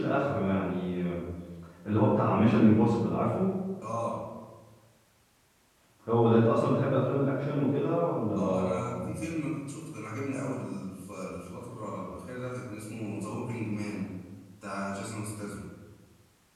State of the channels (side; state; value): both; identical; correlation 1.00